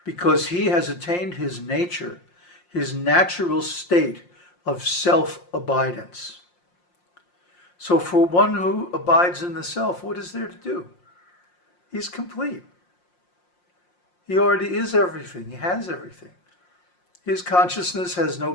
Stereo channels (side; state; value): right; late; 5.7 ms